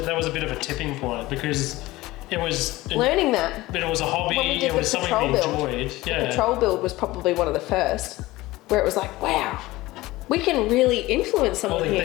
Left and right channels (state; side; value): quieter; right; 18.8 dB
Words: a bit of a tipping point, because it was learning that. But it was a hobby, it was something we enjoyed. The patrol build was probably one of the first, where it was like, wow, we can really influence someone